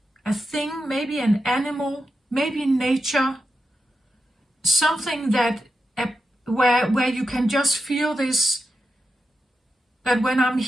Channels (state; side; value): normal; both; correlation 0.89